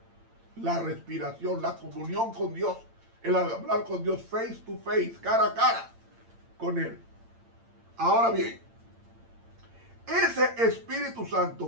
La respiración, la comunión con Dios, el hablar con Dios face to face, cara a cara con Él. Ahora bien, ese Espíritu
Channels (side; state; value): left; late; 8.8 ms